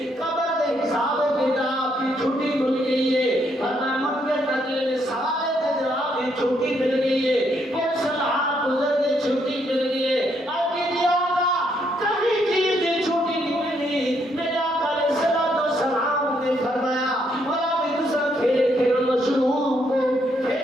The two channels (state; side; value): normal; both; correlation 0.74